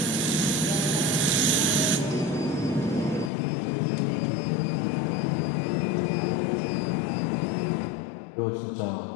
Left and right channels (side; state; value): right; drops out; at 3.3 s